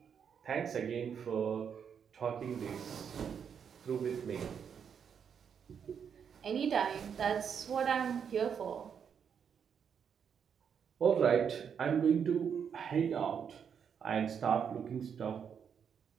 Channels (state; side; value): quieter; left; 7.4 dB